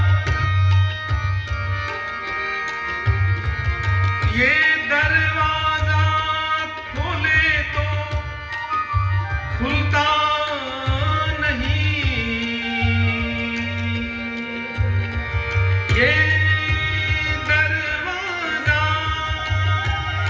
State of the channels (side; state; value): both; identical; correlation 1.00